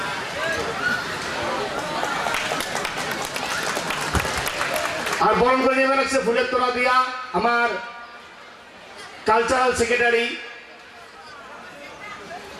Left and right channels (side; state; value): both; identical; correlation 1.00